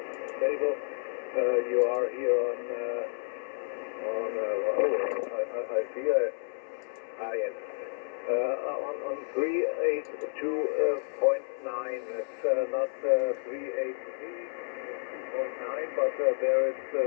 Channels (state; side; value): silent; right; 57 dB below the other